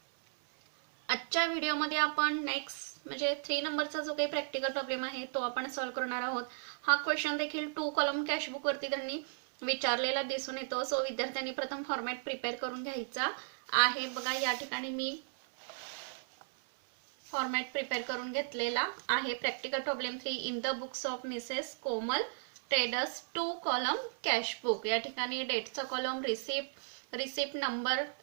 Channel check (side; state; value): left; silent; 54 dB below the other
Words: आजच्या व्हिडिओमध्ये आपण नेक्स्ट म्हणजे 3 नंबरचा जो काही प्रॅक्टिकल प्रॉब्लेम आहे तो आपण सॉल्व्ह करणार आहोत. हा क्वेश्चन देखील 2 कॉलम कॅशबुक वरती त्यांनी विचारलेला दिसून येतो. सो विद्यार्थ्यांनी प्रथम फॉर्मॅट प्रिपेअर करून घ्यायचा आहे. बघा या ठिकाणी मी फॉर्मॅट प्रिपेअर करून घेतलेला आहे. Practical problem 3 in the books of Mrs Komal traders 2 column cash book. या ठिकाणी डेटचा कॉलम, रिसिप्ट नंबर,